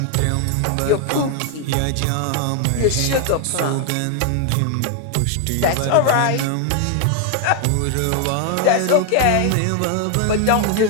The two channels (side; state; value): both; different; correlation 0.00